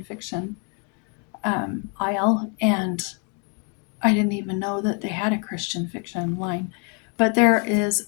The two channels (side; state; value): right; quieter; 36.9 dB